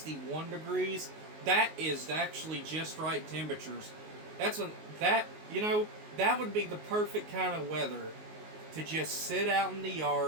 degrees. That is actually just right temperatures. That would be the perfect kind of weather to just sit out in the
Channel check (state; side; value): late; left; 19 ms